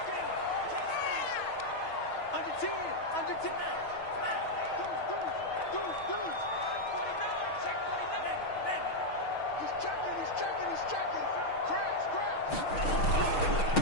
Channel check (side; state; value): right; late; 6.3 ms